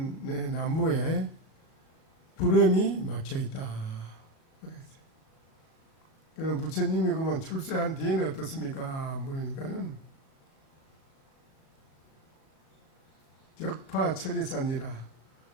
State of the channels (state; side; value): late; right; 37 ms